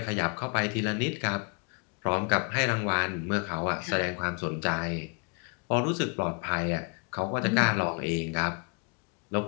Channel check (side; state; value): right; quieter; 36.3 dB